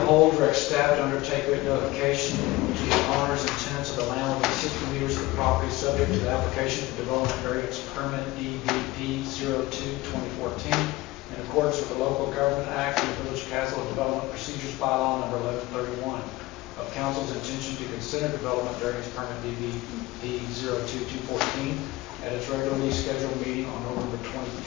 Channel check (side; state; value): right; quieter; 19.7 dB